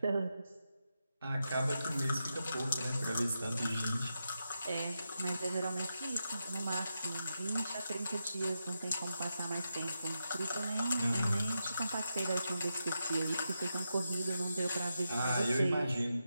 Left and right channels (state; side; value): inverted; both; correlation -0.87